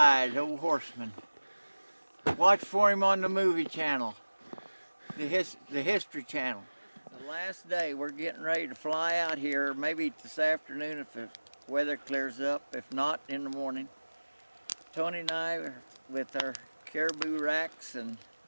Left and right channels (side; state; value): both; inverted; correlation -1.00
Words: old Horseman. Watch for him on the movie channel, the History Channel. The last day, we're getting ready to fly out here, maybe this afternoon if the weather clears up, if not in the morning. Tony and I are with our caribou racks, and